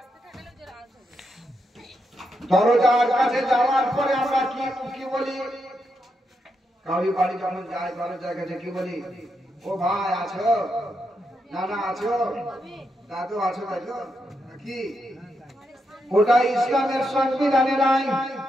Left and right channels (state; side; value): normal; both; correlation 0.83